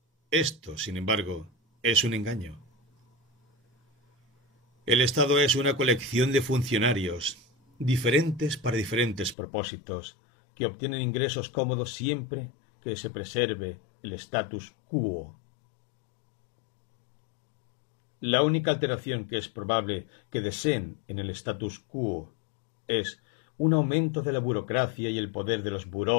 Esto, sin embargo, es un engaño. El Estado es una colección de funcionarios, diferentes para diferentes propósitos, que obtienen ingresos cómodos siempre que se preserve el status quo. La única alteración que es probable que deseen en el status quo es un aumento de la burocracia y el poder de los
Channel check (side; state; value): right; drops out; at 9.3 s